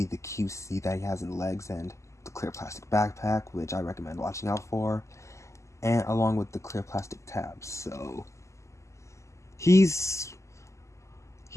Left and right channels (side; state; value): right; late; 0.14 ms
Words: the QC that he has in the legs and the clear plastic backpack, which I recommend watching out for, and along with the clear plastic tabs. So he's